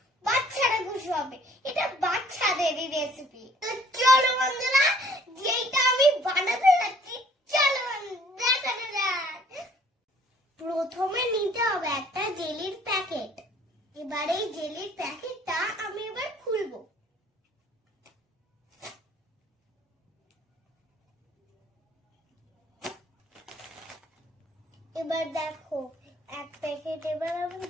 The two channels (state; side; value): normal; both; correlation 0.58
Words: বাচ্চারা খুশি হবে। এটা বাচ্চাদেরই রেসিপি। তো চলো বন্ধুরা, যেটা আমি বানাতে যাচ্ছি, চলো দেখানো যাক। প্রথমে নিতে হবে একটা জেলির প্যাকেট। এবার এই জেলির প্যাকেটটা আমি এবার খুলবো। এবার দেখো, এক প্যাকেট এবার আমি